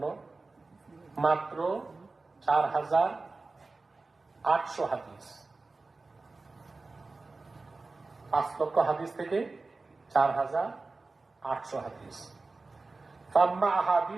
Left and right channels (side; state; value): left; quieter; 3.6 dB